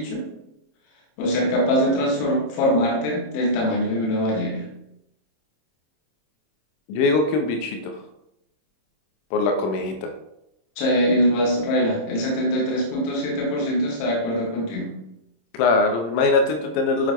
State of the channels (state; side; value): late; right; 26 ms